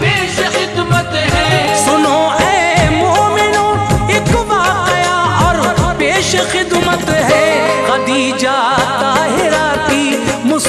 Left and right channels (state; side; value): identical; both; correlation 1.00